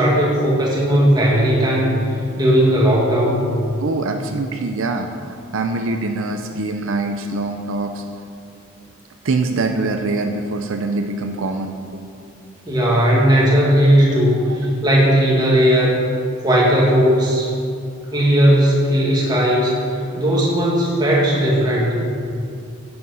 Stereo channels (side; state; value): both; normal; correlation 0.62